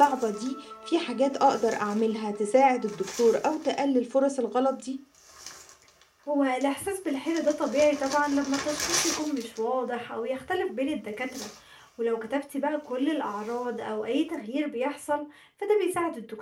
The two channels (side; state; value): both; identical; correlation 1.00